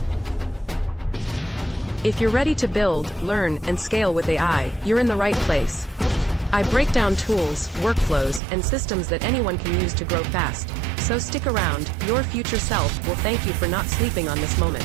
If you're ready to build, learn, and scale with AI, you're in the right place. I break down tools, workflows, and systems that anyone can use to grow fast. So stick around, your future self will thank you for not sleeping on this moment.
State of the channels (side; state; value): left; drops out; at 8.4 s